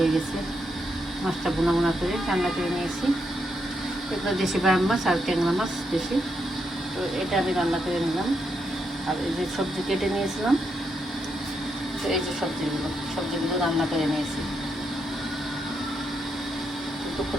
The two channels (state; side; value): normal; both; correlation 0.81